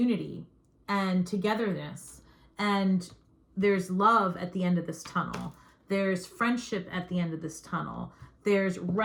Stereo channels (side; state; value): both; identical; correlation 1.00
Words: and togetherness. And there's love at the end of this tunnel. There's friendship at the end of this tunnel. There's